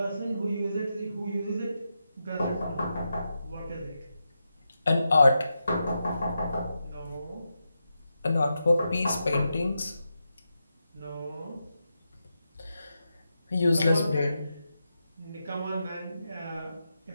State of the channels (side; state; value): both; inverted; correlation -0.87